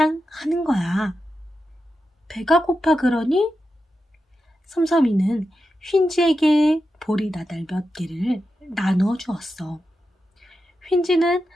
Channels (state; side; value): normal; both; correlation 0.89